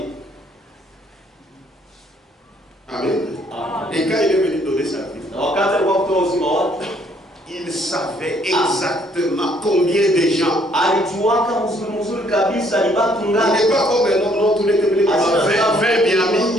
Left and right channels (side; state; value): both; normal; correlation 0.65